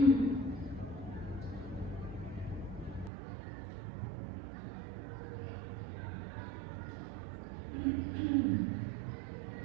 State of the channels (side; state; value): left; drops out; at 3.1 s